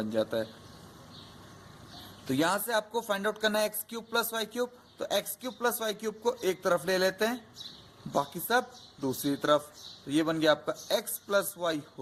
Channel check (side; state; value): both; identical; correlation 1.00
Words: जाता है। तो यहां से आपको फाइंड आउट करना है x cube plus y cube, तो x cube plus y cube को एक तरफ ले लेते हैं, बाकी सब दूसरी तरफ। तो ये बन गया आपका x plus y